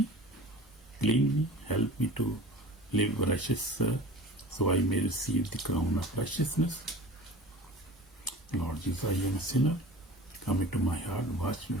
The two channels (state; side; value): normal; both; correlation 0.39